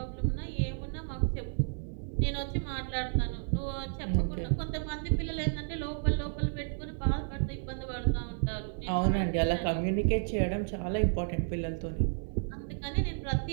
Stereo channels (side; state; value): left; silent; digital silence